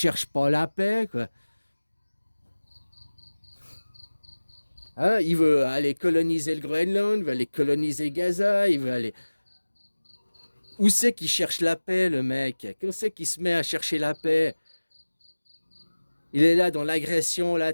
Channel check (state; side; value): inverted; both; correlation -1.00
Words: pas la paix, quoi. Hein? Il veut aller coloniser le Groenland, il veut aller coloniser Gaza, il veut aller... Où c'est qu'il cherche la paix, le mec? Où c'est qu'il se met à chercher la paix? Il est là dans l'agression,